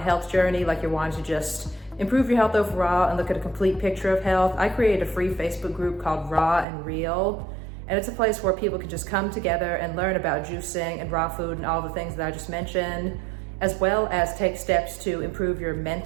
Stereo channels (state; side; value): drops out; left; at 6.7 s